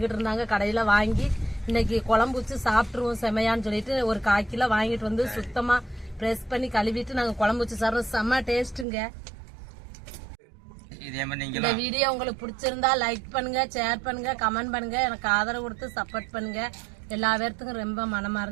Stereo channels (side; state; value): left; drops out; at 8.8 s